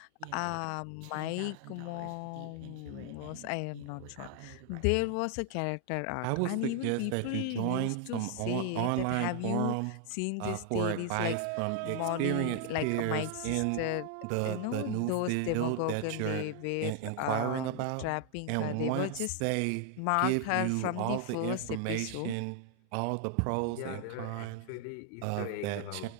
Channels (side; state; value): both; different; correlation 0.00